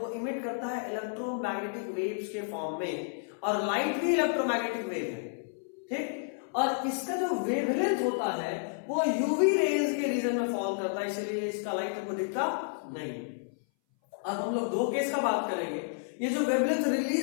इमिट करता है इलेक्ट्रोमैग्नेटिक वेव्स के फॉर्म में, और लाइट भी इलेक्ट्रोमैग्नेटिक वेव है, ठीक। और इसका जो वेवलेंथ होता है वो यूवी रेज के रीजन में फॉल करता है, इसलिए इसका लाइट हमको दिखता नहीं। अब हम लोग दो केस का बात करेंगे। ये जो वेवलेंथ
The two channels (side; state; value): right; silent; 57 dB below the other